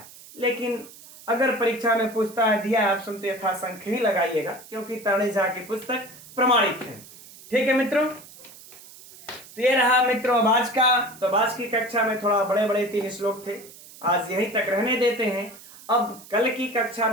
लेकिन अगर परीक्षा में पूछता है दिया है ऑप्शन तो यथासंख्य ही लगाइएगा, क्योंकि तरणी झा की पुस्तक प्रमाणित है। ठीक है मित्रों, तो ये रहा मित्रों आज का। तो आज की कक्षा में थोड़ा बड़े बड़े 3 श्लोक थे, आज यहीं तक रहने देते हैं। अब कल की कक्षा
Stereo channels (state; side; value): noise; right; hiss, 19 dB below the sound